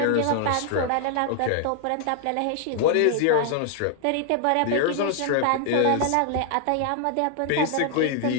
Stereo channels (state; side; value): different; both; correlation 0.00